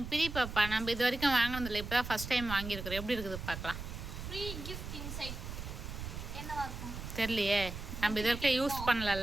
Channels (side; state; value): right; noise; rumble, 8 dB below the sound